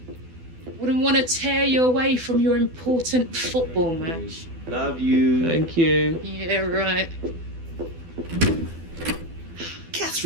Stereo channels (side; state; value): left; late; 12 ms